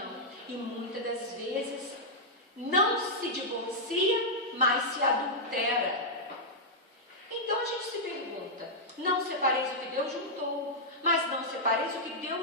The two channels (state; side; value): normal; both; correlation -0.07